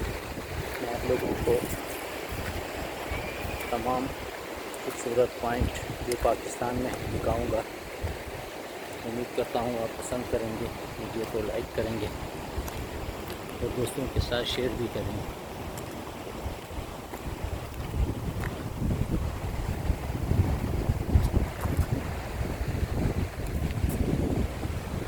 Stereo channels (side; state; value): both; identical; correlation 1.00